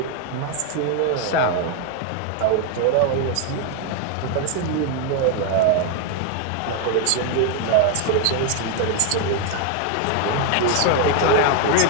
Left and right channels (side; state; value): both; different; correlation 0.01